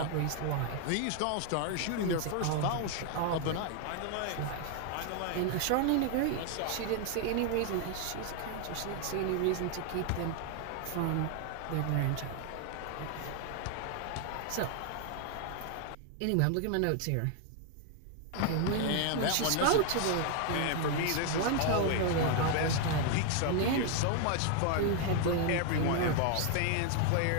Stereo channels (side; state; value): both; different; correlation 0.00